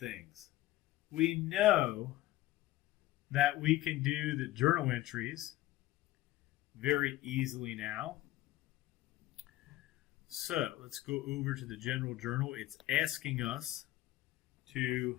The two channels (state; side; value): quieter; right; 16.1 dB